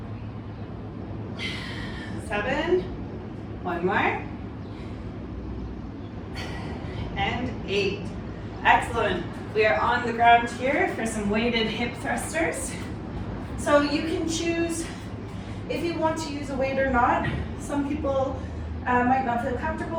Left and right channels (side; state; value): both; identical; correlation 1.00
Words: Excellent. We are on the ground here for some weighted hip thrusters. So you can choose if you want to use a weight or not. Some people might not feel